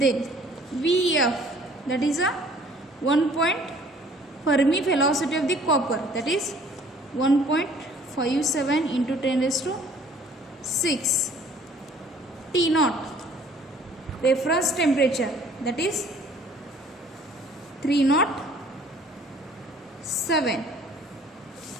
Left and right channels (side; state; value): both; normal; correlation 0.55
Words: Vf, that is a 1 point Fermi velocity of the copper, that is 1.57 into 10 raised to 6. T naught, reference temperature, that is 307